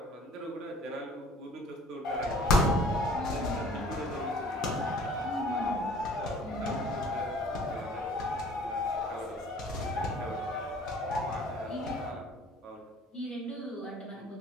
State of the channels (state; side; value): normal; both; correlation 0.50